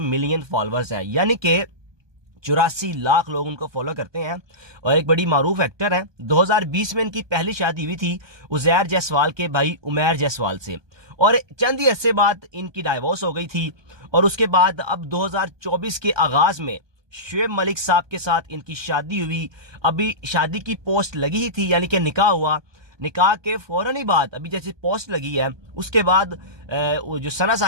ملین فالورز ہیں، یعنی کہ 84 لاکھ لوگ ان کو فالو کرتے ہیں، اور ایک بڑی معروف ایکٹر ہیں۔ 2020 میں ان کی پہلی شادی ہوئی تھی عزیر جیسوال کے بھائی عمیر جیسوال سے، اور چند ہی عرصے بعد ان کی ڈائیورس ہو گئی تھی، اور اس کے بعد اب 2024 کے آغاز میں شعیب ملک صاحب کے ساتھ ان کی شادی ہوئی۔ ابھی شادی کی پوسٹ لگی ہی تھی، یعنی کہ نکاح ہوا، نکاح کے فوراً ہی بعد ابھی جیسے پوسٹ لگی ہے اس کے بعد جو ثنا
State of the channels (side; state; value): left; late; 1.2 ms